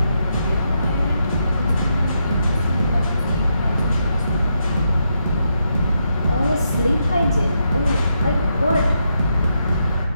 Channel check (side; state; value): both; inverted; correlation -0.81